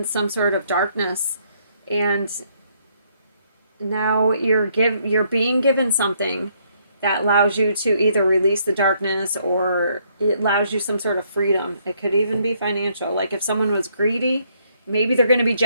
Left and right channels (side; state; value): both; inverted; correlation -0.70